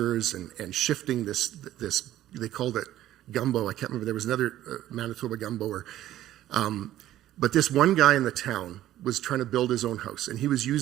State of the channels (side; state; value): left; quieter; 13.4 dB